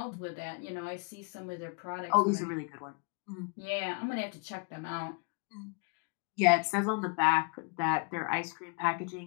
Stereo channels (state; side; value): quieter; right; 36.0 dB